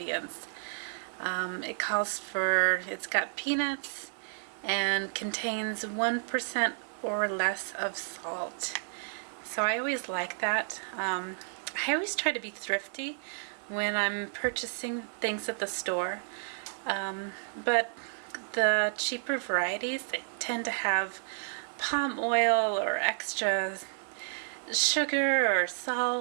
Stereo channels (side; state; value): left; silent; 55 dB below the other